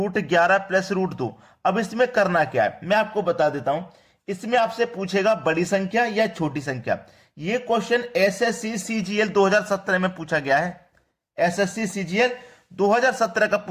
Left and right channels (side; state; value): both; identical; correlation 1.00